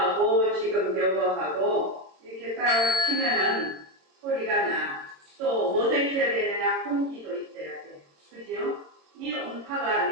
지금 요거하고 이렇게 딱 치면은 소리가 나. 또 뭐도 있어야 되느냐? 공기도 있어야 돼. 그죠? 이 음파가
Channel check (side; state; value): left; late; 22 ms